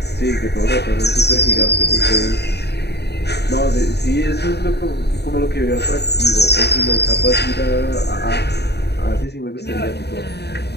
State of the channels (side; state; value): right; late; 0.48 ms